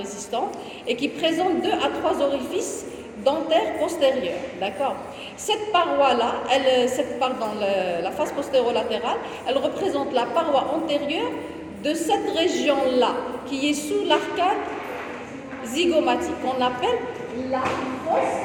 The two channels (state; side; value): identical; both; correlation 1.00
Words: et qui présente 2 à 3 orifices dentaires postérieurs, d'accord. Cette paroi-là, la face postéro-latérale, elle représente la paroi antérieure de cette région-là, qui est sous l'arcade zygomatique, qu'on appelle la fosse